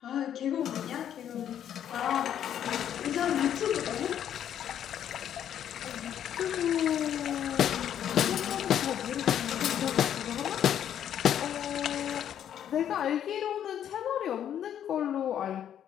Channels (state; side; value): quieter; right; 9.9 dB